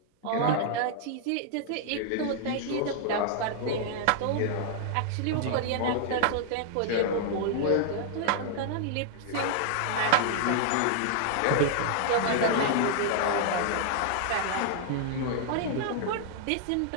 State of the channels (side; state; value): both; different; correlation -0.01